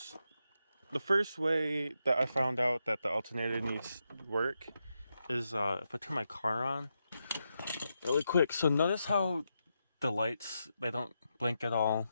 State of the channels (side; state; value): both; inverted; correlation -0.85